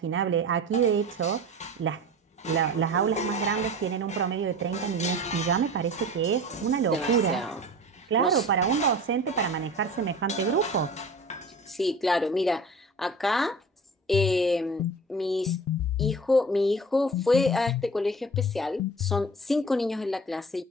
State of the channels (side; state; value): both; normal; correlation 0.38